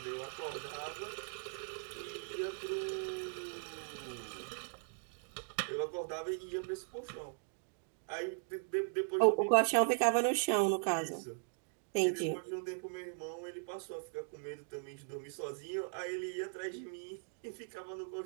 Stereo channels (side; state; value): left; silent; digital silence